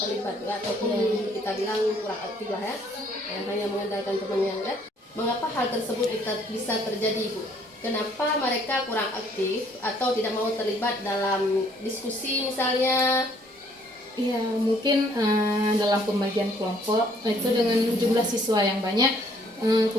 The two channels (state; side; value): normal; both; correlation 0.63